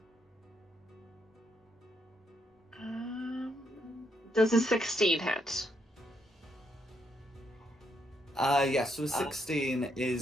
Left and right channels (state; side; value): normal; both; correlation 0.76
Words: Does a 16 hit? Yes, so a 16